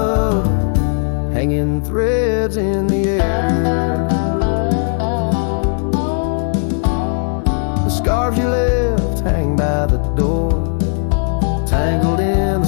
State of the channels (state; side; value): silent; right; 66 dB below the other